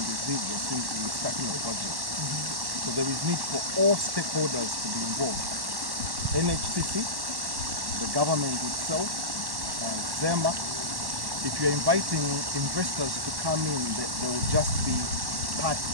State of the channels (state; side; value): late; left; 1.1 ms